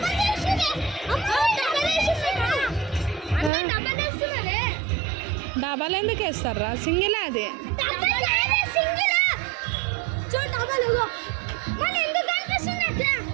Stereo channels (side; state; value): left; drops out; at 3.5 s